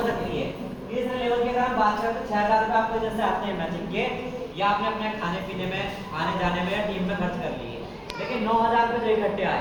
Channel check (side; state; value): both; identical; correlation 1.00